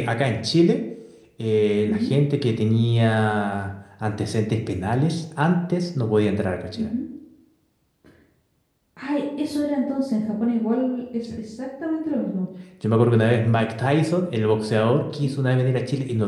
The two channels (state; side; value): identical; both; correlation 1.00